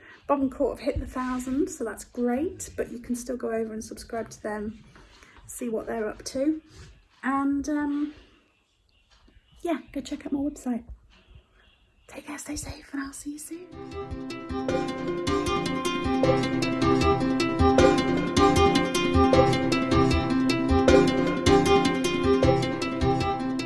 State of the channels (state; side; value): identical; both; correlation 1.00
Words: Bob and Court have hit the 1,000, so that's great, but you can still go over and subscribe to them, see what they're up to, and yeah, go check out my website. Take care, stay safe, and I'll see you soon.